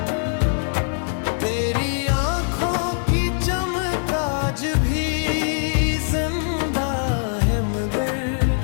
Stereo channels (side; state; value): right; silent; digital silence